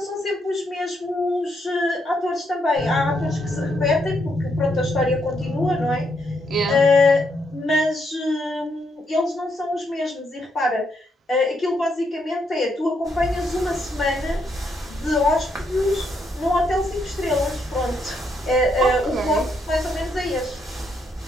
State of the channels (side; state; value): both; normal; correlation 0.77